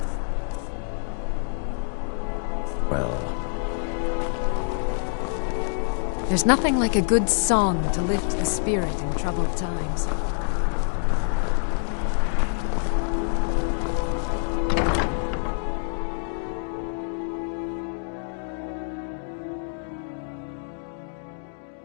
Well... There's nothing like a good song to lift the spirit in troubled times.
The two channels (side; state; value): right; silent; 61 dB below the other